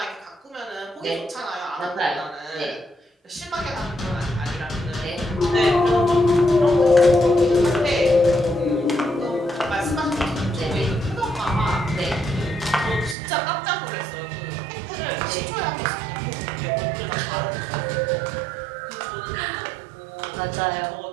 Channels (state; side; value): drops out; left; at 13.2 s